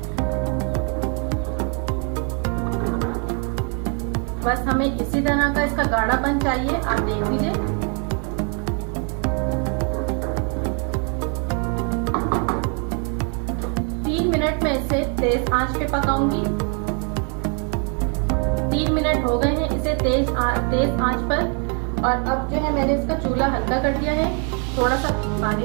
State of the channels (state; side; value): quieter; left; 39.0 dB